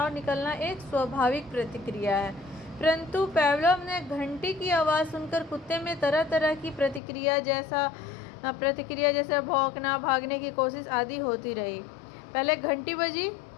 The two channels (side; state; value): right; drops out; at 7.0 s